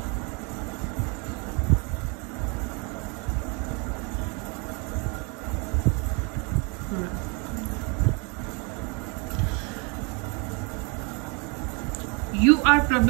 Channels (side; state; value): left; quieter; 31.9 dB